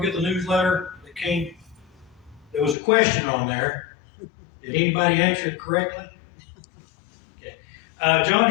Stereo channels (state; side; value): drops out; right; at 2.8 s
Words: get the newsletter that came? There was a question on there. Did anybody answer it correctly? Okay.